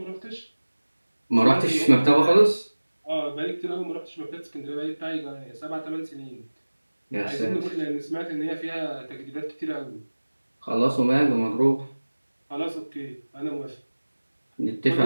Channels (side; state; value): both; inverted; correlation -1.00